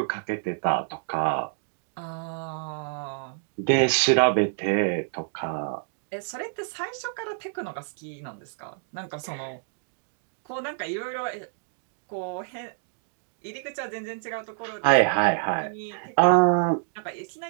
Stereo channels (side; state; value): left; silent; digital silence